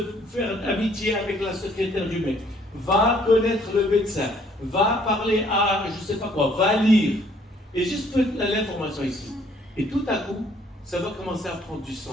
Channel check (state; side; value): normal; both; correlation 0.62